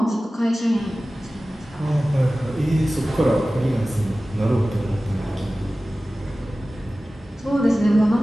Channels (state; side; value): normal; both; correlation 0.96